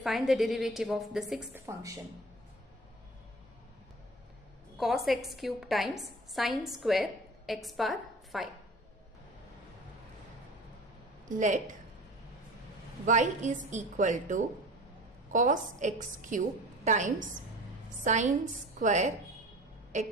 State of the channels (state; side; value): normal; both; correlation 0.39